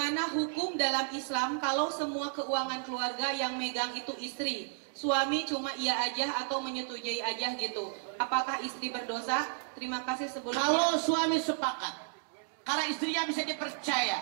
hukum dalam Islam kalau semua keuangan keluarga yang megang itu istri? Suami cuma iya aja atau menyetujui aja gitu. Apakah istri berdosa? Terima kasih sebelumnya. Kalau suami sepakat, karena istrinya bisa dipercaya,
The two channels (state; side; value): silent; left; digital silence